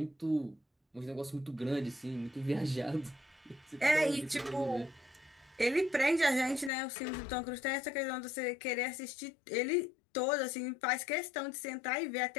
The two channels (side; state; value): right; drops out; at 6.7 s